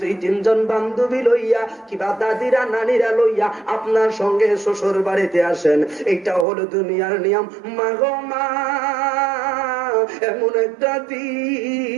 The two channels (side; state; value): left; drops out; at 6.5 s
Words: 2-3 জন বান্ধবী লইয়া কিবা দাদিরা নানিরা লইয়া আপনার সঙ্গে শ্বশুর বাড়িতে আসেন। এটা হলো দুনিয়ার নিয়ম। মা গো মা, এমন একটা